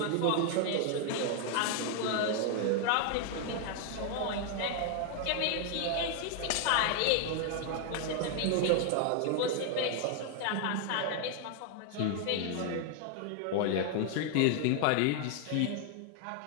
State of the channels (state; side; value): different; both; correlation 0.00